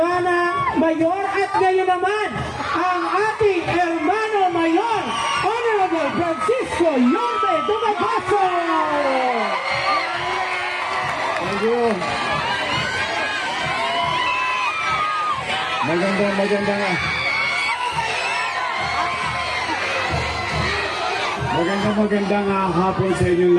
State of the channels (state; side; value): identical; both; correlation 1.00